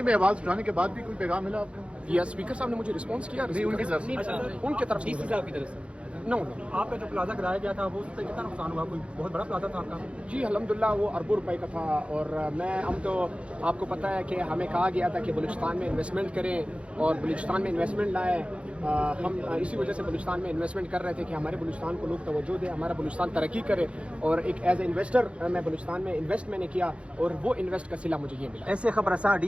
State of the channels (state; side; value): late; left; 0.060 ms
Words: में आवाज उठाने के बाद भी कोई पैगाम मिला आपको? या स्पीकर साहब ने मुझे रिस्पॉन्स किया? नहीं, उनकी तरफ से। उनकी तरफ डीसी साहब की तरफ से। नो आपका जो प्लाजा गिराया गया था वो उस पर कितना नुकसान हुआ? कोई बहुत बड़ा प्लाजा था आपका? जी अल्हम्दुलिल्लाह वो अरबों रुपए का था। और हम तो आपको पता है कि हमें कहा गया था कि बलूचिस्तान में इन्वेस्टमेंट करें और बलूचिस्तान में इन्वेस्टमेंट लाएँ। हम इसी वजह से बलूचिस्तान में इन्वेस्टमेंट कर रहे थे कि हमारे बलूचिस्तान को लोग तवज्जो दें, हमारा बलूचिस्तान तरक्की करे। और एक एज ए इन्वेस्टर मैं बलूचिस्तान में इन्वेस्ट मैंने किया और वो इन्वेस्ट का सिला मुझे ये मिला। ऐसे खबरसार